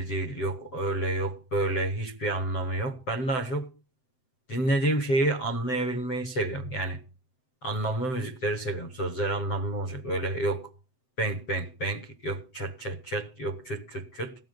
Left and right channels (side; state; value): right; late; 7.8 ms